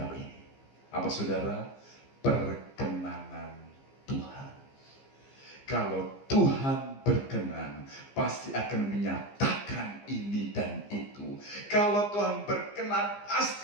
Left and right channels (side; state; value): right; late; 15 ms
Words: ini. Apa saudara? Perkenanan Tuhan. Kalau Tuhan berkenan, pasti akan menyatakan ini dan itu. Kalau Tuhan berkenan,